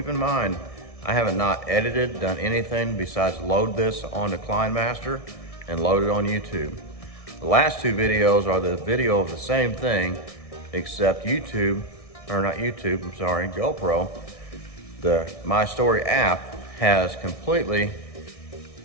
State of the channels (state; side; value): late; right; 1.6 ms